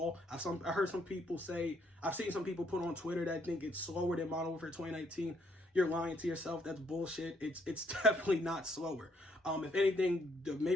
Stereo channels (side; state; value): both; normal; correlation 0.70